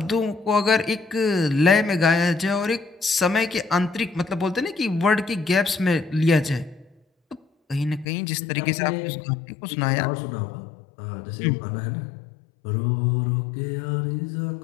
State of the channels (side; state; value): right; drops out; at 8.1 s